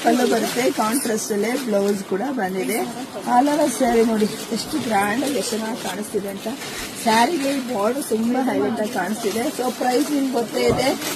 ಪಲ್ಲು ಬರುತ್ತೆ, ಕಾಂಟ್ರಾಸ್ಟ್ ಅಲ್ಲೇ ಬ್ಲೌಸ್ ಕೂಡ ಬಂದಿದೆ. ಆಲ್ ಓವರ್ ಸ್ಯಾರಿ ನೋಡಿ ಎಷ್ಟು ಗ್ರ್ಯಾಂಡ್ ಆಗಿ ಎಷ್ಟು ಚೆನ್ನಾಗಿ ಕಾಣಿಸ್ತಿದೆ ಅಂತ. ಸ್ಯಾರಿಗೆ ಬಾರ್ಡರ್ ತುಂಬಾ ಹೈಲೈಟ್ ಆಗಿ ಕಾಣಿಸ್ತಿದೆ. ಸೊ ಪ್ರೈಸ್ ನಿಮ್ಗೆ ಗೊತ್ತೇ ಇದೆ,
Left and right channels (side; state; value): both; identical; correlation 1.00